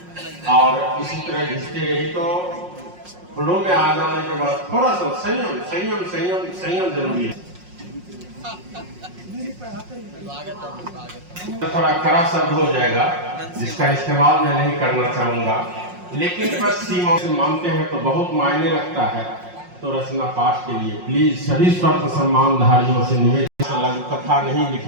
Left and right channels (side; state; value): left; late; 5.5 ms